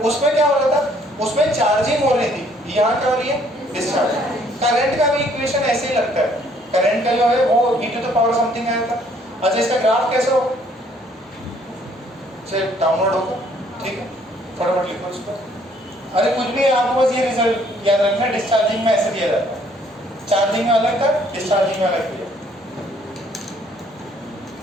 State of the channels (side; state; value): both; normal; correlation 0.63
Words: उसमें क्या हो रहा था, उसमें चार्जिंग हो रही थी, यहाँ क्या हो रही है डिस्चार्जिंग। करंट का भी इक्वेशन ऐसे ही लगता है, करंट का जो है वो e to the power something आया था। अच्छा इसका ग्राफ कैसे हो, चलिए डाउनलोड होगा, ठीक है फटाफट लिखो इसको, अरे कुछ भी आपको बस ये रिजल्ट याद रखना, डिस्चार्जिंग में ऐसे दिया जाता है, चार्जिंग में अलग था डिस्चार्जिंग में अलग दिया।